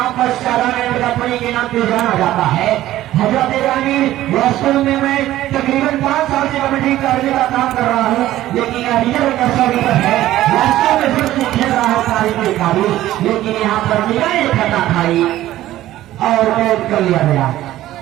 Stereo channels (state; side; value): quieter; left; 14.5 dB